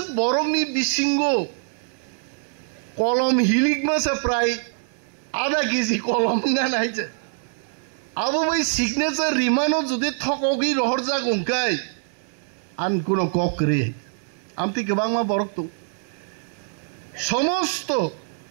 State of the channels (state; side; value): silent; left; digital silence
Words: বরংনি বিসিঙ্গ কলম হিলিক মাসে প্রায় আধা কেজি কলম গান আইছে আবো ভাই সিগনেচার রিমানো যদি থকগি রহর যাক উঙ্কাই আন কোনো কক রে আমতি গোबांमा বরক তো সমস্ত